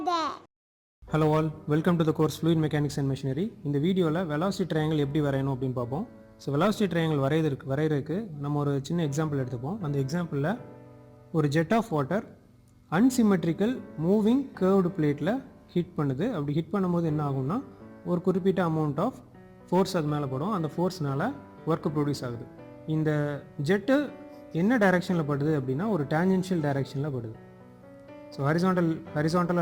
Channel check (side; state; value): both; identical; correlation 1.00